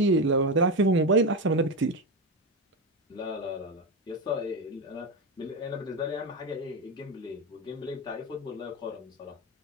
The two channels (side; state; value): both; normal; correlation 0.15